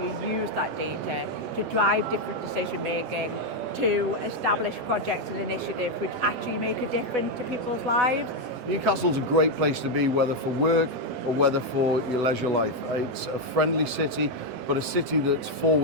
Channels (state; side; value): late; left; 12 ms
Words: use that data to drive different decision making, to establish projects and initiatives which actually make a difference to people's lives. Newcastle's a great place to be, whether for work or whether for your leisure life. It's a friendly city, but a city that's